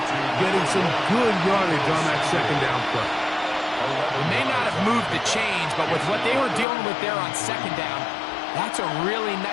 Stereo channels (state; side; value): drops out; right; at 6.7 s